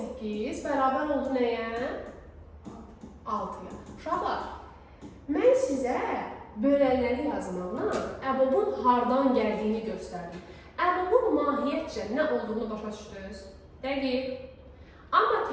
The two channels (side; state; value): both; identical; correlation 1.00